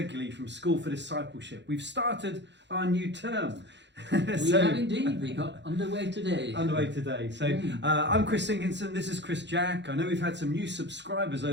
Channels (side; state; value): left; late; 0.52 ms